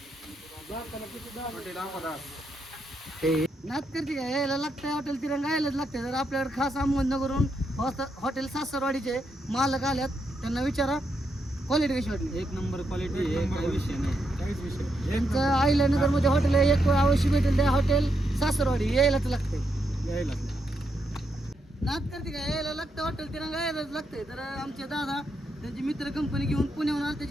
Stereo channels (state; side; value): normal; both; correlation 0.81